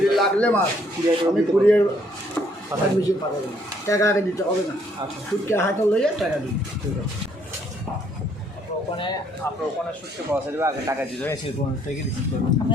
লাগলে মাছ আমি কুরিয়ার মেশিন পাঠাবেন। টাকা আগে দিতে হবে না, শুটকে হাতে লইয়ে টাকা দিন। ঠিক আছে, আপনার ওখানে শুটকি পাওয়া যাবে, আগে টাকা দিতে হয়।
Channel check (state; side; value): normal; both; correlation 0.67